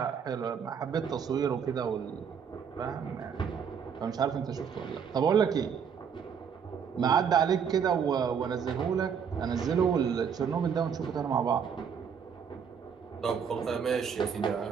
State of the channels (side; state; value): left; quieter; 7.0 dB